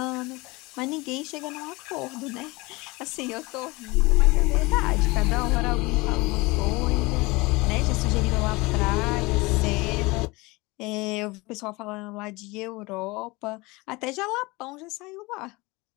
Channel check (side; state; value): right; quieter; 23.6 dB